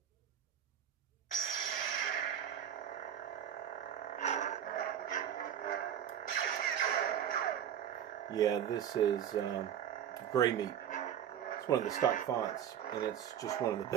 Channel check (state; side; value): quieter; left; 9.6 dB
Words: Yeah, this is Gray Meat. It's one of the stock fonts, and it's just one of the